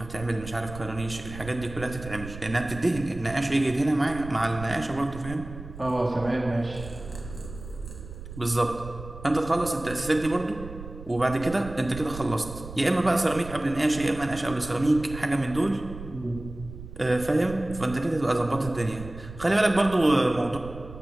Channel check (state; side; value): noise; right; rumble, 13 dB below the sound